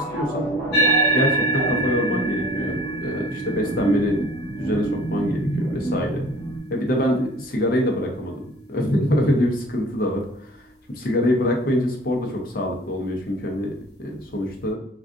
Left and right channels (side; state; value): both; normal; correlation 0.48